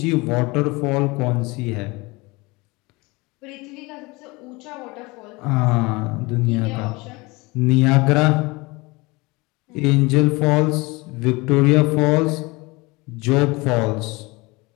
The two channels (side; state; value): right; quieter; 24.4 dB